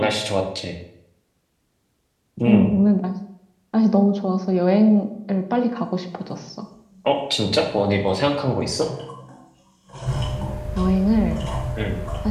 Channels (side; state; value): both; identical; correlation 1.00